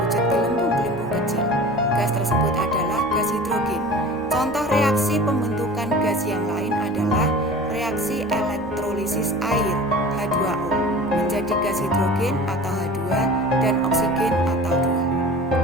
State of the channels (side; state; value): both; normal; correlation 0.39